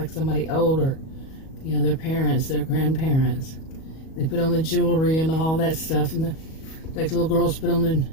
somebody older, their parents, their grandparents. They put on the jewelry and all that stuff, and like little girls put on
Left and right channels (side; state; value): right; late; 37 ms